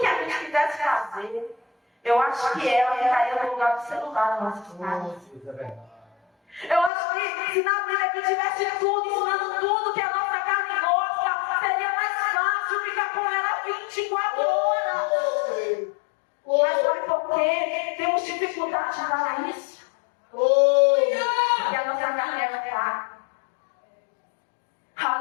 a gente quisesse fazer, eu acho que ela ficaria no lugar do celular na nossa casa. Eu acho que se na Bíblia aqui tivesse tudo, ensinando tudo que a nossa carne gosta, seria mais fácil ficar com ela 24 horas. Mas sabe por quê? Temos dificuldade de falar isso? Porque a nossa carne é fraca.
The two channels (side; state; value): right; drops out; at 6.9 s